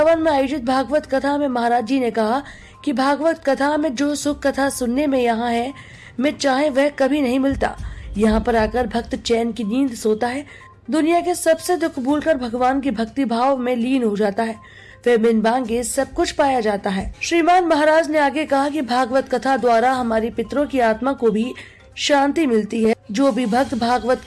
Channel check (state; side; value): identical; both; correlation 1.00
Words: में आयोजित भागवत कथा में महाराज जी ने कहा कि भागवत कथा में जो सुख कथा सुनने में यहाँ है, में चाहे वह कभी नहीं मिलता। यहाँ पर आकर भक्त चैन की नींद सोता है, दुनिया के सबसे दुख भूलकर भगवान की भक्ति भाव में लीन हो जाता है, फिर बिन मांगे सब कुछ पाया जाता है। श्रीमान महाराज ने आगे कहा कि भागवत कथा द्वारा हमारी पितरों की आत्मा को भी शांति मिलती है। जो भी भक्त भागवत